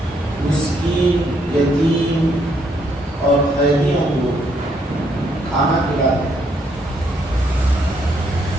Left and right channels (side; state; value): both; normal; correlation 0.72